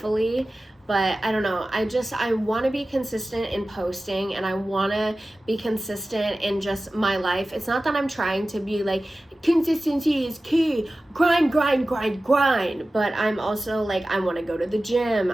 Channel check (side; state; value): both; normal; correlation 0.96